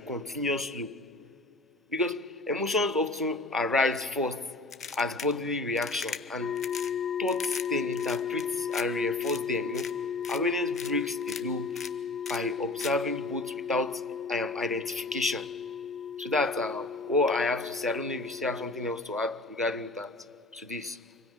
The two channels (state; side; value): quieter; right; 3.0 dB